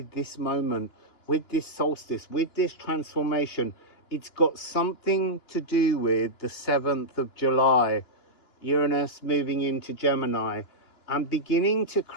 this moment, with this solstice, with this transformation. It's got something to do with the 7th of July, Uranus moving into Gemini and beginning to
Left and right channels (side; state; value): right; late; 2.9 ms